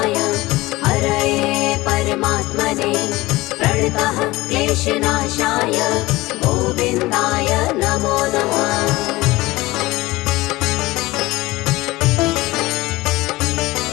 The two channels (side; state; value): right; quieter; 19.7 dB